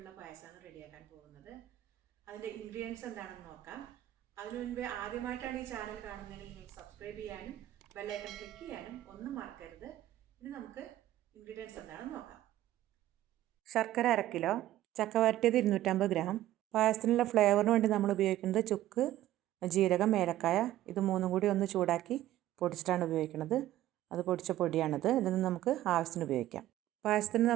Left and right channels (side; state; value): left; quieter; 14.0 dB